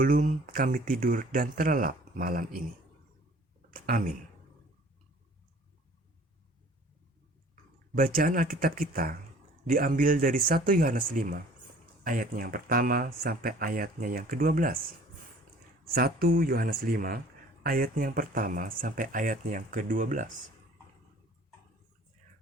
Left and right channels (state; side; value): normal; both; correlation 0.51